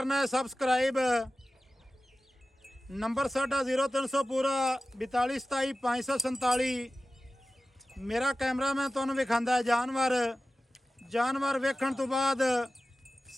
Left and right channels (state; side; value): normal; both; correlation 0.95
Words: है सबसक्राइब। नंबर साडा 0300 पूरा 42 27 547। मेरा कैमरा मैं तुहानू विखांदा है जानवर वेखण तो बाद